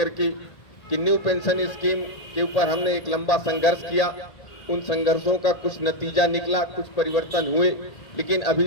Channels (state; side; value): late; right; 1.8 ms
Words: के, कि न्यू पेंशन स्कीम के ऊपर हमने एक लंबा संघर्ष किया, उन संघर्षों का कुछ नतीजा निकला, कुछ परिवर्तन हुए, लेकिन